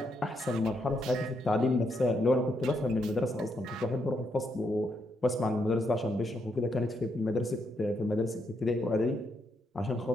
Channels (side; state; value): both; normal; correlation 0.78